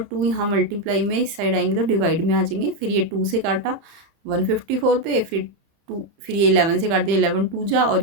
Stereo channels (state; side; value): late; left; 30 ms